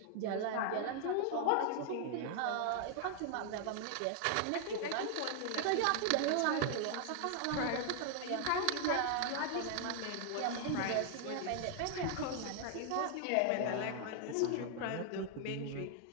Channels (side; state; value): both; different; correlation 0.00